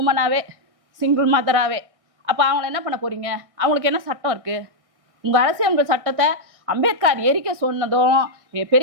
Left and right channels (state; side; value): late; left; 1.6 ms